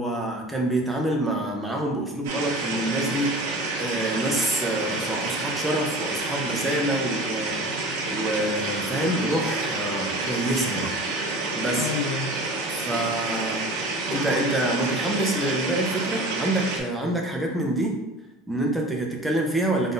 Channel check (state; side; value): normal; both; correlation 0.40